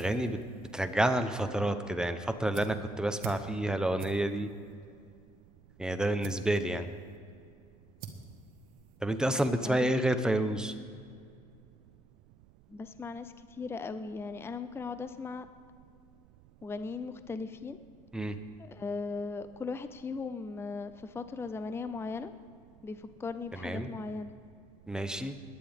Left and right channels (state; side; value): noise; right; rumble, 25 dB below the sound